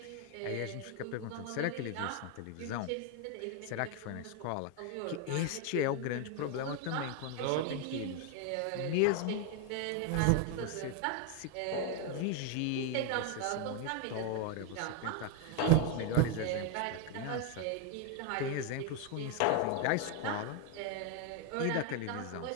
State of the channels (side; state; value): both; different; correlation 0.01